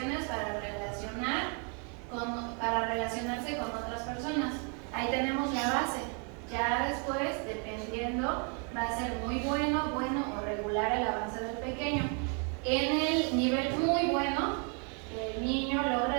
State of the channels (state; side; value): quieter; left; 38.3 dB